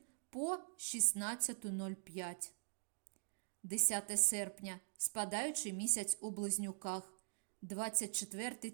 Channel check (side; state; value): left; silent; digital silence